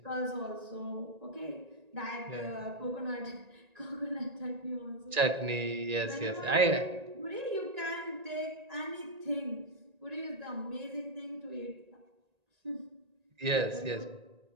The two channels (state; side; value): late; left; 1.9 ms